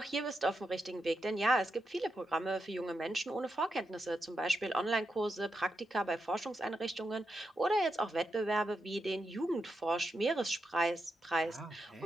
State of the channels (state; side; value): normal; both; correlation 0.86